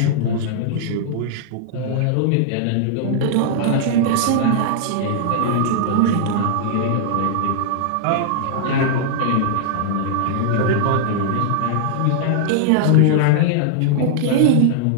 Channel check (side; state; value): both; different; correlation -0.01